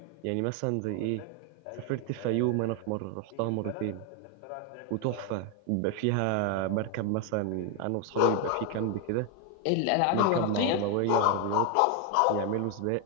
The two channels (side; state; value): both; different; correlation 0.01